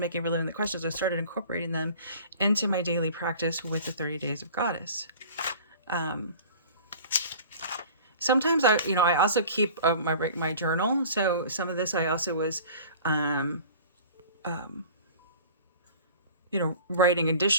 for Living the Questions. I started incorporating them into my daily practice with the 30 Days of Goddess. Sometimes I also keep my journal. So some of this I also was, writing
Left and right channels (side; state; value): both; inverted; correlation -0.44